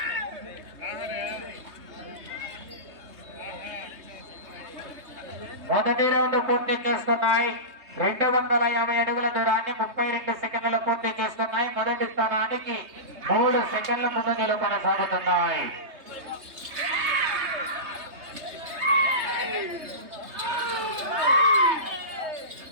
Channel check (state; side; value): late; left; 3.2 ms